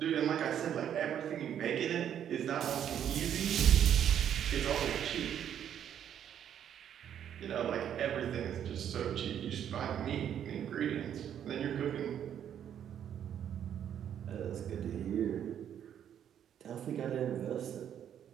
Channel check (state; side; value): quieter; left; 9.5 dB